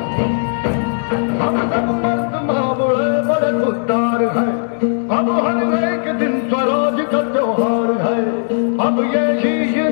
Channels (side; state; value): right; silent; digital silence